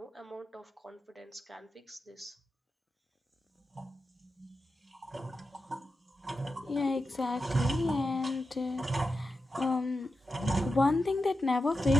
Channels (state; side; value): normal; both; correlation 0.90